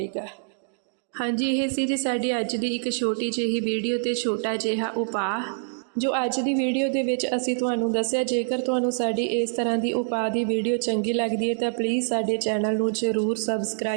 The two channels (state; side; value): silent; left; digital silence